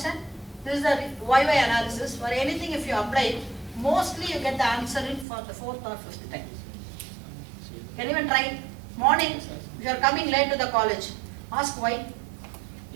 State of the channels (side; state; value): left; drops out; at 5.2 s